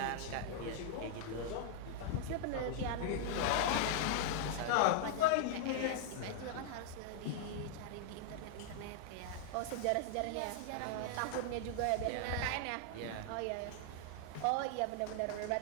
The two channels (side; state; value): both; different; correlation -0.01